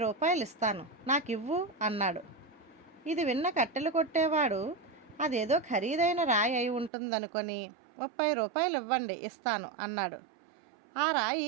రూపాయలు ఇస్తాను, నాకివ్వు అన్నాడు. ఇది విన్న కట్టెలు కొట్టేవాడు అదేదో ఖరీదైన రాయి అయి ఉంటుందనుకొని, 30 రూపాయలు ఇవ్వండి, ఇస్తాను అన్నాడు. ఆ రాయి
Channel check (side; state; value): left; drops out; at 6.9 s